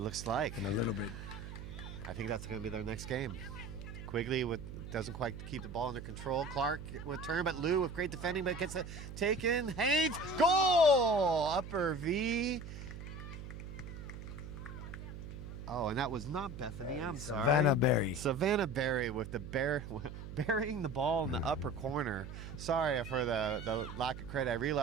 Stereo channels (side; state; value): right; noise; hum, 10 dB below the sound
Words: like. in a little bit. I think that's going to be their next game. Quigley doesn't quite keep the ball under control. Clark with turn, but Lou with great defending, but gets it taken. Haynes, goal! Upper V. Oh, and that was not Bethany. I'm sorry. Savannah Berry. Savannah Berry with burying the ball in the upper corner. Sorry for the lack of credit. I